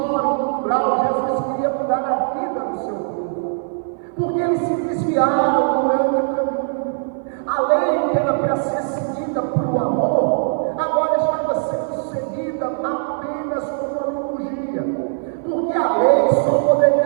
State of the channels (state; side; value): silent; left; 57 dB below the other